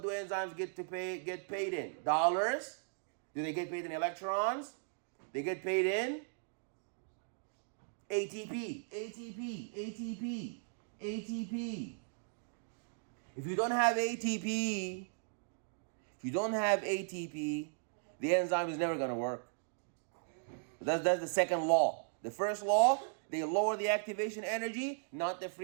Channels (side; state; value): left; silent; digital silence